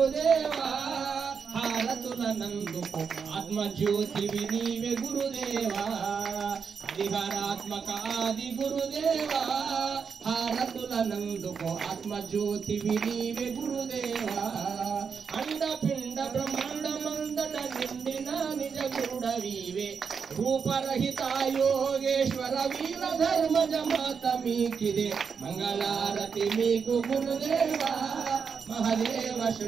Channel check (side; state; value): left; quieter; 6.1 dB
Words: హారతుల నందుకు ఆత్మజ్యోతివి నీవే గురుదేవా హరిహరాత్మక ఆది గురుదేవా హారతుల నందుకు ఆత్మజ్యోతివి నీవే గురుదేవా అండపిండ బ్రహ్మాండ మందట నిండిన నిజ గురుడవీవే రూపరహిత యోగేశ్వర వీర ధర్మజ మాత మీకిదే మంగళారతి మీకు గురుదేవా మహదేవ